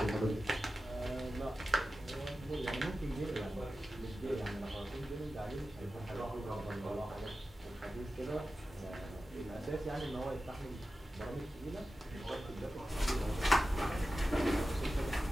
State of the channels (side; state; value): both; normal; correlation 0.94